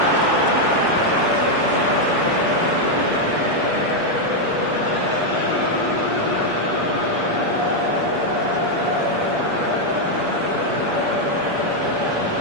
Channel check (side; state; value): left; late; 7.2 ms